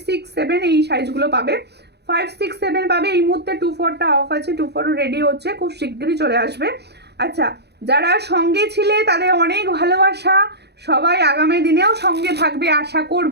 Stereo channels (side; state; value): left; late; 0.48 ms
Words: 6, 7 এই সাইজগুলো পাবে, 5, 6, 7 পাবে। এই মুহূর্তে 24টা অফ আছে, 24 রেডি হচ্ছে, খুব শীঘ্রই চলে আসবে। আচ্ছা যারা সঙ্গে ছিলে তাদের অনেক ভালোবাসা, সবাই আগামী দিনেও সঙ্গে থাকবে আশা